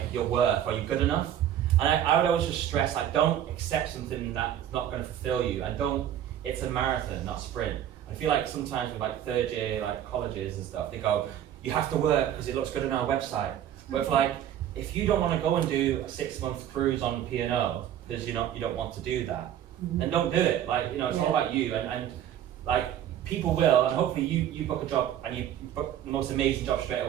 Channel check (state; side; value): quieter; left; 10.8 dB